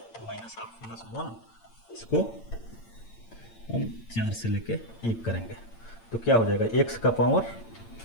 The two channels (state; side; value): late; right; 8.8 ms